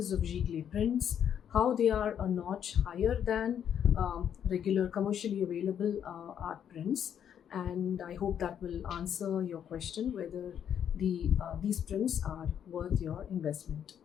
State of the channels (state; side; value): quieter; right; 8.9 dB